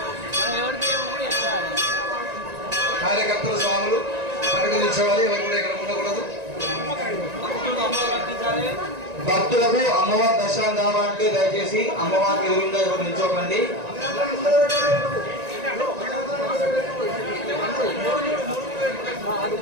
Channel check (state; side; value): late; left; 1.9 ms